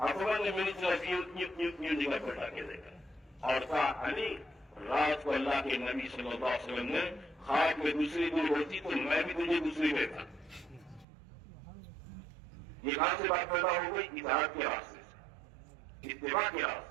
نے میری طرف یوں جگہ بیٹھا کے دیکھا اور کہا علی رات کو اللہ کے نبی صلی اللہ علیہ وسلم نے خواب میں دوسری دور ہوتی تو میں بھی تجھے دوسری دیتا. یہ کہاں سے بات پیدا ہو گئی؟ اطاعت کے راستے سے، اتباع کے راستے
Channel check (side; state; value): left; drops out; at 11.1 s